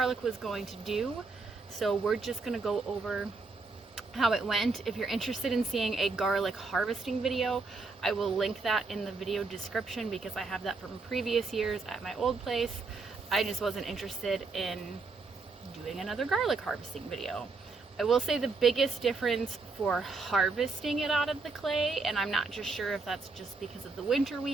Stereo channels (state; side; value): quieter; left; 3.9 dB